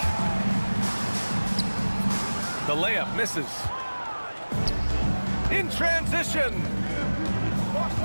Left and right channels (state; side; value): inverted; both; correlation -1.00